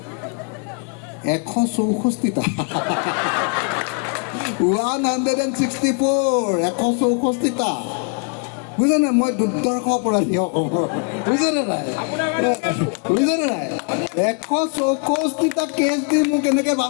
164টা। 164টা, বুজিছে নাই? মই দুৰ্দৰ্শ অপৰাধী অসমৰ, বুজিছেনে নাই? 164টা কেছ দি মোক এনেকৈ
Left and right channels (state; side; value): quieter; right; 37.3 dB